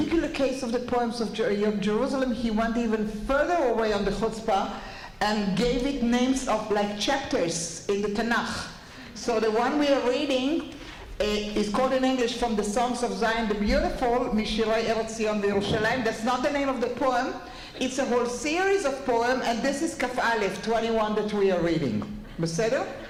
case of the Poems of Jerusalem, he went even further away on the chutzpah and gave it names of like chapters in the Tanakh. So the one we are reading is called in English From the Songs of Zion the Beautiful, Mishirei Eretz Zion v'Yerushalayim. That's not the name of the poem. It's a whole series of poems, and this is Kaf Aleph 21 that we are reading. Beseder?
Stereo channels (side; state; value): both; identical; correlation 1.00